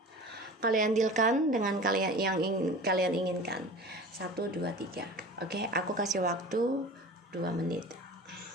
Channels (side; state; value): both; normal; correlation 0.37